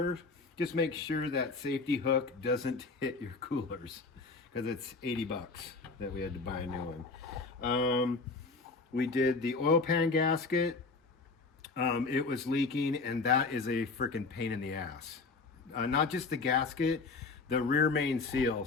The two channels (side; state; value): right; quieter; 4.0 dB